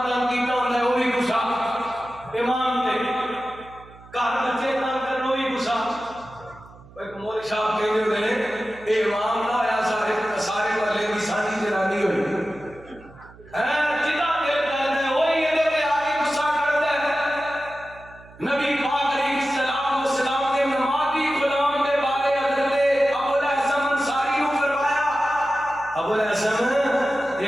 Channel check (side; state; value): right; noise; hum, 22 dB below the sound